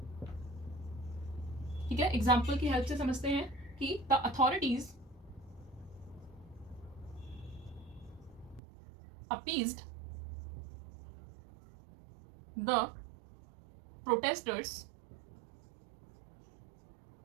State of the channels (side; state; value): left; drops out; at 8.6 s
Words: ठीक है, एग्जाम्पल की हेल्प से समझते हैं कि the authorities appeased the protesters